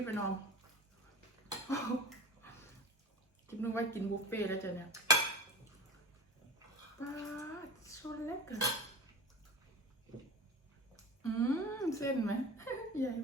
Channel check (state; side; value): normal; both; correlation 0.31